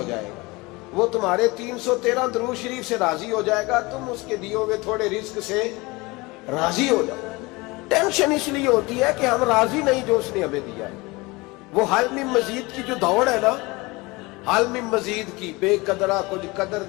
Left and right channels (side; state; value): right; quieter; 23.7 dB